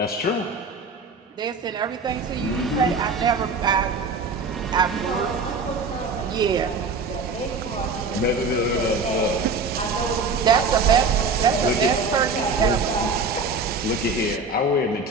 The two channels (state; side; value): quieter; left; 3.9 dB